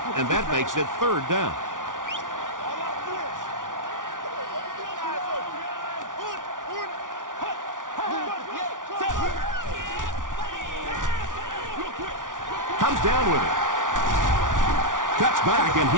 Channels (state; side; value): late; left; 0.88 ms